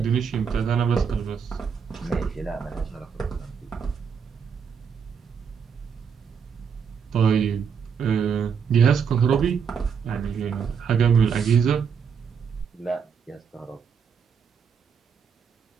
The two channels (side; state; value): left; quieter; 6.6 dB